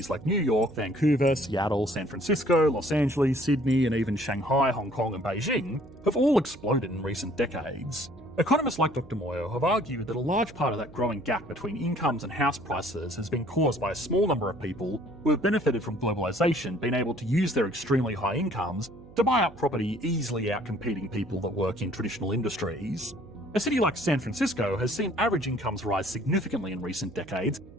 like New York, Vancouver, Seattle, San Francisco, Los Angeles, Sydney, and even Shanghai, Hong Kong, and Beijing have all exploded in recent decades. Economists like Dr. Moyo have argued that a large part of that growing gap between incomes and house prices has been caused by a small number of people who have benefited from globalisation being able to use their extremely high incomes to buy up property, easily outcompeting people that work in traditional industries. A city like San Francisco has seen average incomes rise significantly in recent decades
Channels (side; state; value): right; noise; hum, 20 dB below the sound